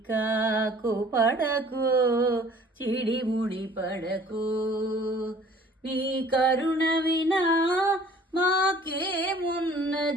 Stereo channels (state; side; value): normal; both; correlation 0.52